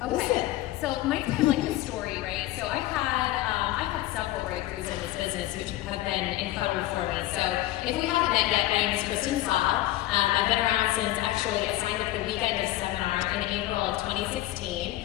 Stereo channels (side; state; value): right; quieter; 15.8 dB